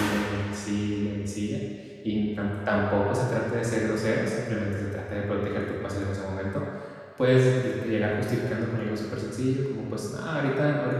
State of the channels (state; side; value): identical; both; correlation 1.00